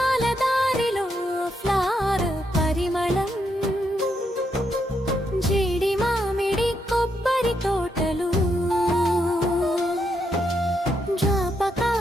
దారిలో ఫ్లవర్ పరిమళం జీడి మామిడి కొబ్బరి తోటలు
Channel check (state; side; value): normal; both; correlation 0.79